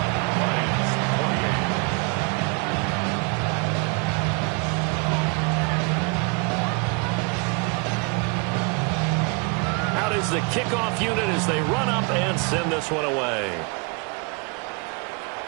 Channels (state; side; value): quieter; left; 32.7 dB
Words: Out is the kickoff unit as they run up and send this one away.